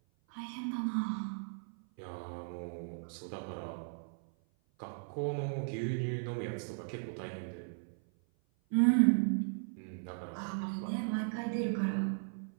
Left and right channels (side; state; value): left; silent; 53 dB below the other